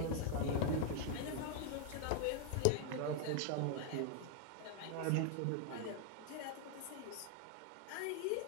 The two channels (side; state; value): both; different; correlation 0.00